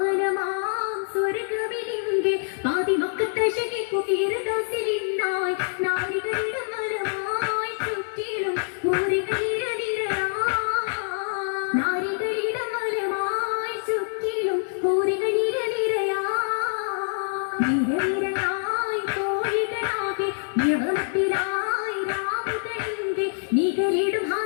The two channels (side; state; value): right; silent; digital silence